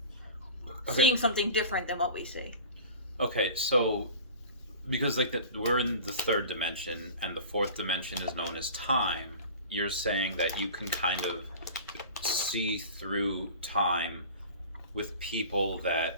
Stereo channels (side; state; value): both; inverted; correlation -0.37